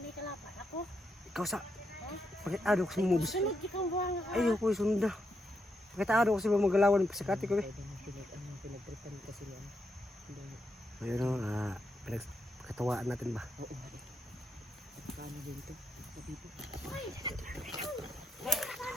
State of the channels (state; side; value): normal; both; correlation 0.81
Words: kalapan ako? Ikaw sa... Pagkatado ko sa mumubis. Sunod ikang buwang ka. Ayoko yung sunod na. Pagkatado ko sa mga magalawan ng pasakati ko eh. Pinagtripan kasi niya. Ayun o, pinagkatawaan natin ba? Oo nga eh. Paano din ito? Dito.